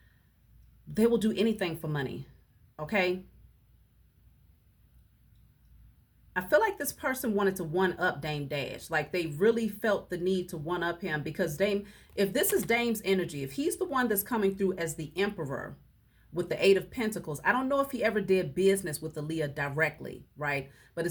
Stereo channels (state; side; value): identical; both; correlation 1.00